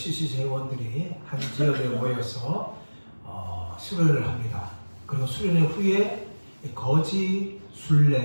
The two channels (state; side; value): inverted; both; correlation -1.00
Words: 회원들이 한 지역에 모여서 수련을 합니다. 그리고 수련 후에 거지